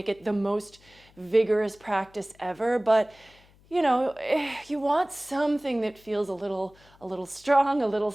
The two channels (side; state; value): left; noise; hum, 28 dB below the sound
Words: it the most vigorous practice ever, but you want something that feels a little strong, a little